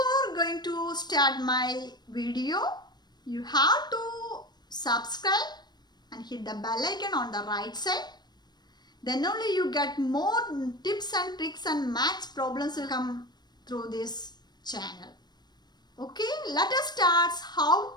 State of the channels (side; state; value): right; late; 0.20 ms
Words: going to start my video, you have to subscribe and hit the bell icon on the right side. Then only you get more tips and tricks and maths problems will come through this channel. Okay, let us start